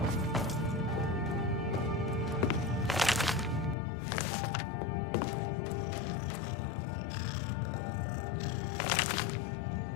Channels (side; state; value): right; drops out; at 3.8 s